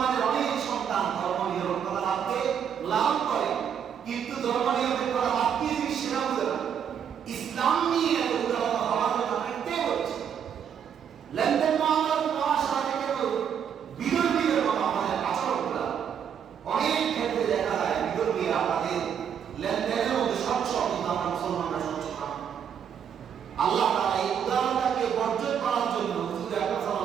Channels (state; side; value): quieter; left; 8.2 dB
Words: অনেক সন্তান ধর্ম নিরপেক্ষতা ভাবকে লালন করে, কিন্তু ধর্ম নিরপেক্ষতা ভাব কি জিনিস সেটা বুঝে না। ইসলাম নিয়ে এত উদাহরণ হওয়ার জন্য আপনি কে বলছেন? লেনদেন মামলার নেওয়ার সাথে কেউ বিধর্মীদের মতো আমাদের আচরণ করা। অনেক ক্ষেত্রে দেখা যায় বিধর্মীরা তাদের লেনদেনের মধ্যে স্বচ্ছ, কিন্তু আমরা মুসলমানরা স্বচ্ছ না। আল্লাহ তাআলা এই উদাহরণটাকে বর্জন করার জন্য হুজুর আকরাম